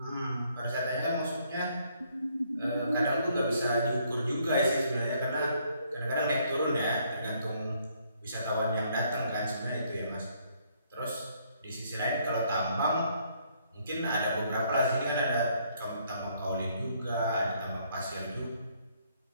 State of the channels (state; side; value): inverted; both; correlation -0.68